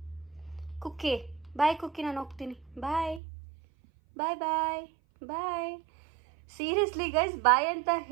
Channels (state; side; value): drops out; left; at 3.2 s